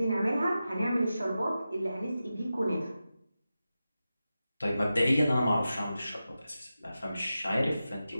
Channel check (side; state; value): both; inverted; correlation -0.93